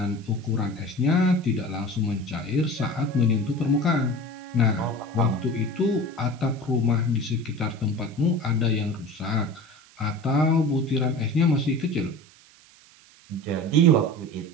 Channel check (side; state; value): right; noise; hiss, 26 dB below the sound